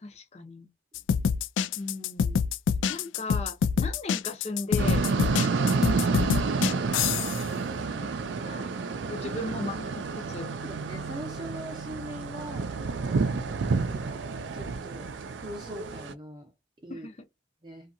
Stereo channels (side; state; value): both; normal; correlation 0.51